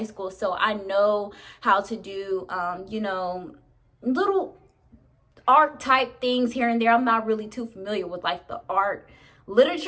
school, so I know how to do you know, little art type things here and there. I'm not really too familiar with like the art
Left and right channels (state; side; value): identical; both; correlation 1.00